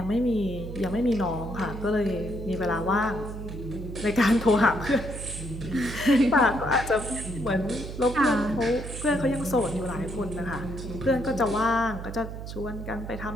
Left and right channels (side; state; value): right; noise; hum, 9 dB below the sound